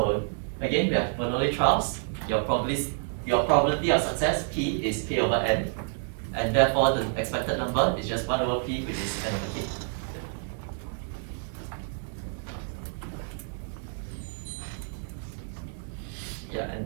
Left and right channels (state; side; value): silent; left; 59 dB below the other